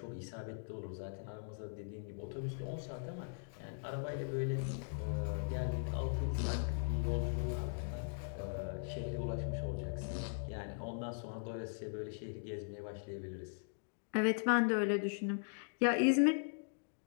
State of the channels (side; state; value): right; silent; digital silence